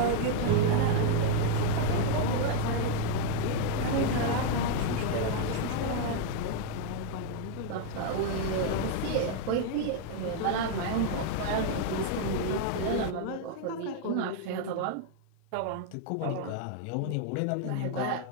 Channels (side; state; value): both; different; correlation 0.01